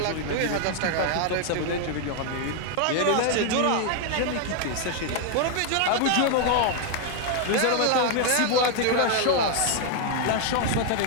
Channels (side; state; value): both; different; correlation 0.00